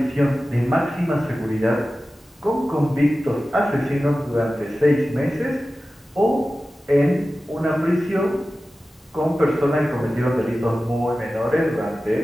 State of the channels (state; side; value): normal; both; correlation 0.95